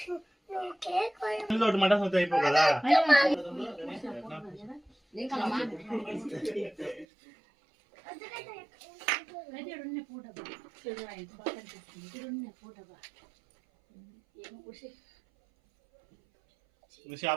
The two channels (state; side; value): drops out; left; at 7.1 s